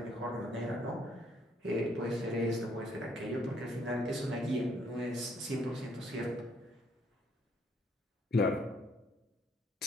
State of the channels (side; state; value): both; normal; correlation 0.67